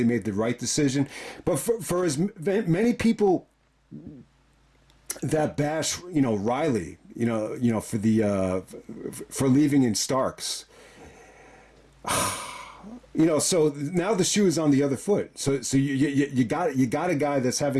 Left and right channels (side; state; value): both; identical; correlation 1.00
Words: made the right decision. But for as many people that bash, Riley, for for leaving in Starks, so now the shoe is on the other foot. So you got a guy that's